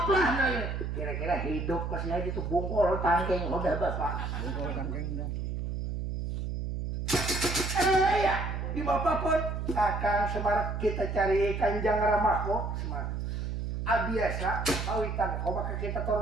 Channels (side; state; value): right; noise; hum, 3 dB below the sound